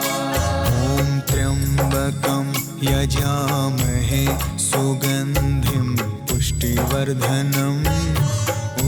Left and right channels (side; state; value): both; identical; correlation 1.00